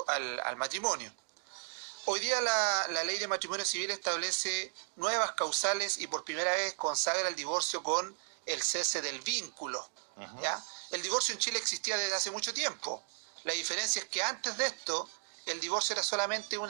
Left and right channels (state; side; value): silent; left; digital silence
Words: matrimonio. Hoy día la ley de matrimonio civil establece nuevas causales y por primera vez consagra el divorcio con el cese del vínculo. ¿Ya? El divorcio en Chile existía desde hace mucho tiempo. La diferencia es que antes de esto el divorcio era solamente